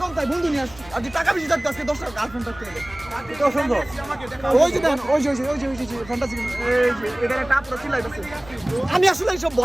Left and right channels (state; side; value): noise; left; rumble, 20 dB below the sound